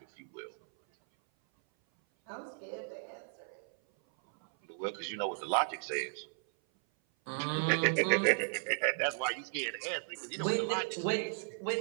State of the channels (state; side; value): silent; left; 54 dB below the other